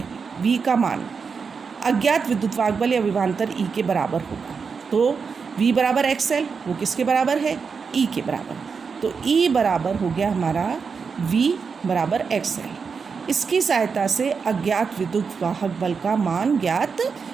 V का मान अज्ञात विद्युत वाहक बल या विभवांतर E के बराबर होगा। तो V बराबर XL, वो किसके बराबर है, E के बराबर। तो E बराबर हो गया हमारा V बराबर XL। इसकी सहायता से अज्ञात विद्युत वाहक बल का मान ज्ञात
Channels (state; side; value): quieter; left; 5.5 dB